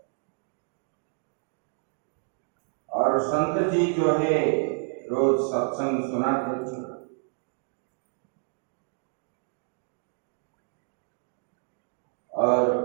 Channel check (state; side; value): silent; left; 58 dB below the other